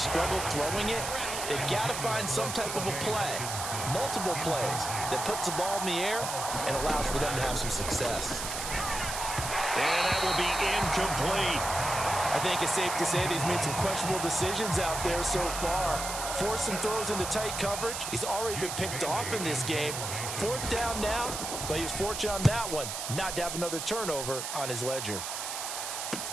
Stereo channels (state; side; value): noise; right; hiss, 5 dB below the sound